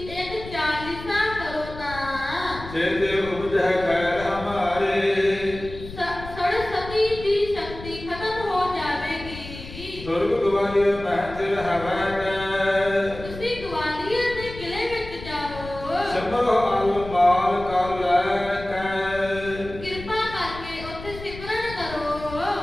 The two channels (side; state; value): left; noise; rumble, 13 dB below the sound